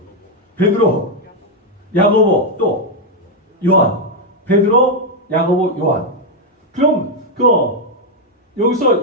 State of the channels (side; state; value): both; normal; correlation 0.01